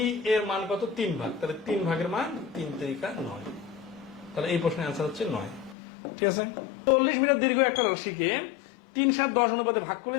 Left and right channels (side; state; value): right; drops out; at 5.8 s